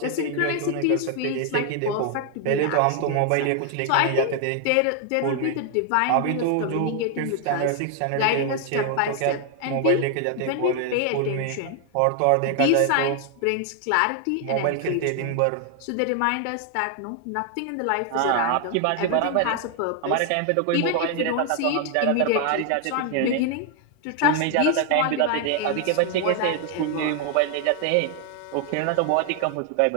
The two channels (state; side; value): different; both; correlation 0.00